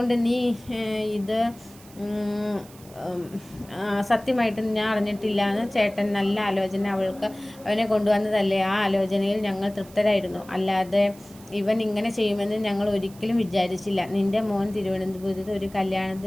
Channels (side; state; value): right; noise; hiss, 23 dB below the sound